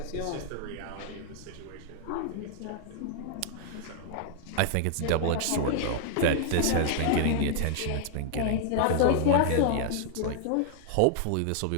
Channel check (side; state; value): both; different; correlation 0.00